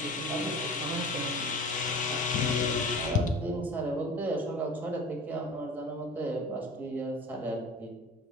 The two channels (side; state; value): both; normal; correlation 0.38